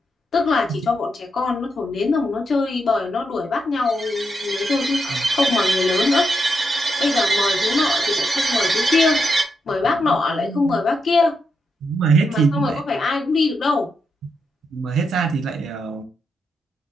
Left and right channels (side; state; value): both; normal; correlation 0.83